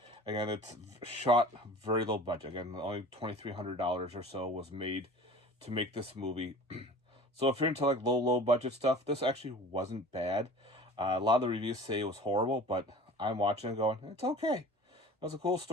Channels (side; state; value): both; normal; correlation 0.42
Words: Again, it's shot very low budget. Again, only $2,300 or so was made to make this movie. So if you're into like low budget stuff, this actually wasn't bad. A lot of the reviews say it was horrible, but I'm watching and going, it's okay. It was a cool